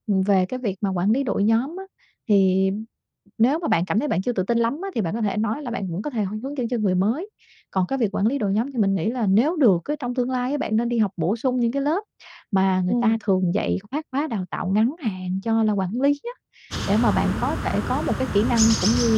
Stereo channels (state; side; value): identical; both; correlation 1.00